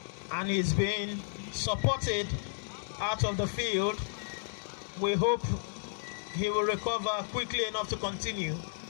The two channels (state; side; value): silent; right; digital silence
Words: And he's been supported out of the field. We hope he will recover quickly enough to continue,